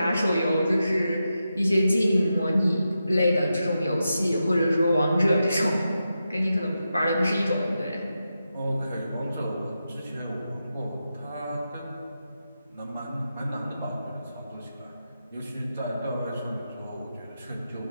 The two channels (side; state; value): both; inverted; correlation -0.89